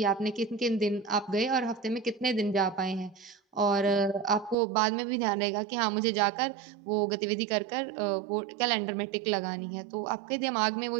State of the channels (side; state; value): left; drops out; at 4.5 s